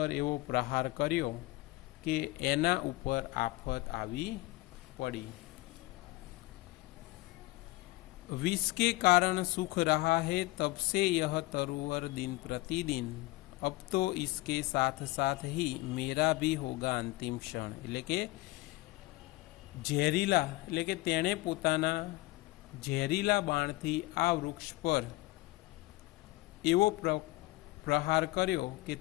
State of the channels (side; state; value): right; quieter; 20.5 dB